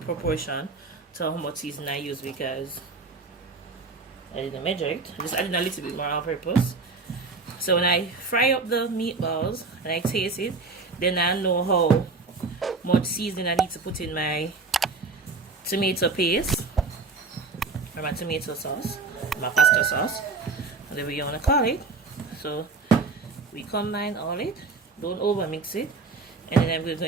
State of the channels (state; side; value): quieter; left; 4.1 dB